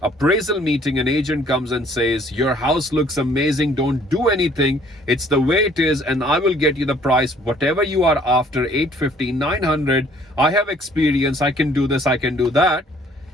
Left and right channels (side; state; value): both; normal; correlation 0.59